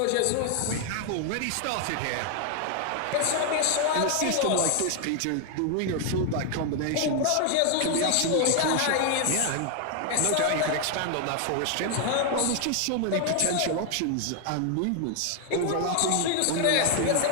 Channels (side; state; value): both; different; correlation 0.01